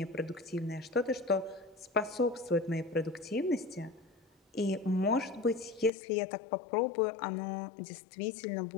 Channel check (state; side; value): drops out; right; at 5.9 s